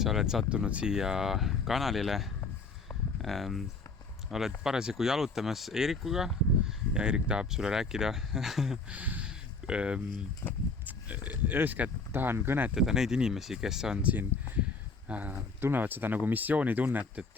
sa oled sattunud siia kanalile. Oled parasjagu jalutamas Eerikuga ja Eerik tahab sulle rääkida. Eeskätt tahan kõnetada neid inimesi, kes on siin, tunnevad seda nagu missioonitunnet,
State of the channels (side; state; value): right; quieter; 3.9 dB